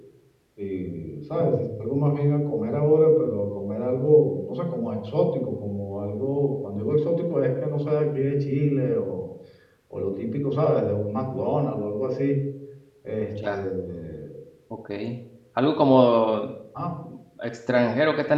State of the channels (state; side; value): identical; both; correlation 1.00